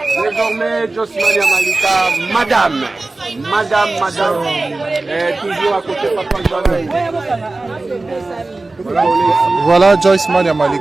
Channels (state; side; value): quieter; left; 3.2 dB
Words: Désormais, Josmania Malika, madame, toujours à côté de Papa Joël. Voilà Joyce Mania